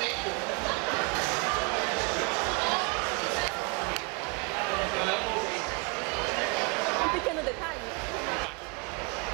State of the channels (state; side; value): quieter; left; 31.8 dB